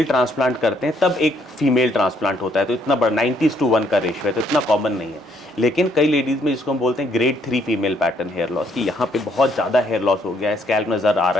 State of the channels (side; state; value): both; normal; correlation 0.69